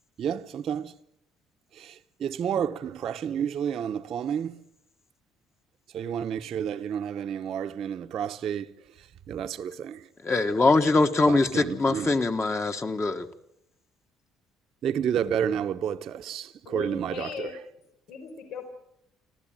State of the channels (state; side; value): normal; both; correlation 0.77